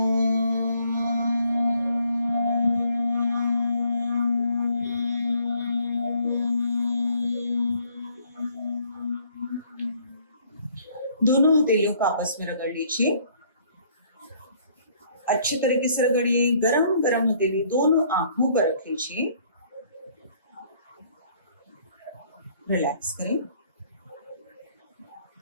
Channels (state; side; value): inverted; both; correlation -0.63